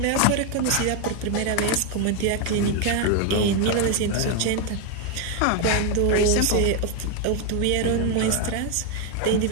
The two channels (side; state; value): both; different; correlation 0.01